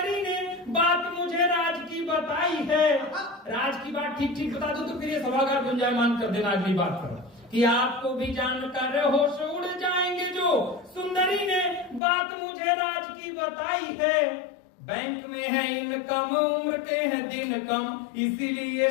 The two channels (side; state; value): right; drops out; at 12.0 s